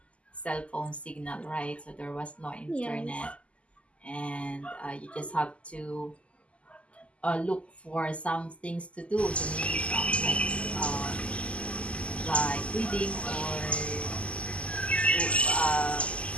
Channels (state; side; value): late; right; 0.061 ms